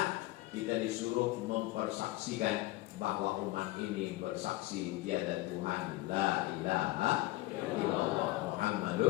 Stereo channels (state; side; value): quieter; right; 18.7 dB